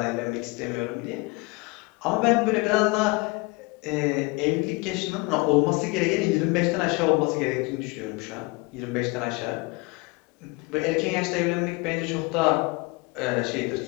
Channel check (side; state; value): right; quieter; 26.3 dB